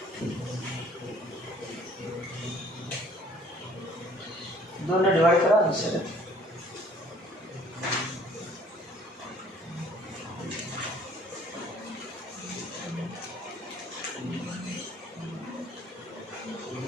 2 ने डिवाइड करा आंसर.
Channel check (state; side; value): normal; both; correlation 0.56